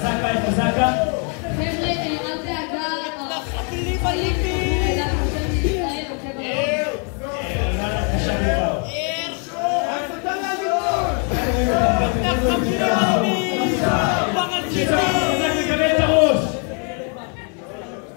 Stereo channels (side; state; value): right; quieter; 39.6 dB